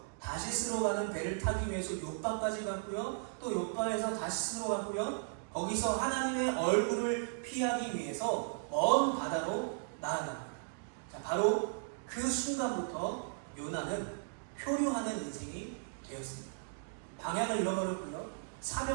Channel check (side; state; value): left; silent; digital silence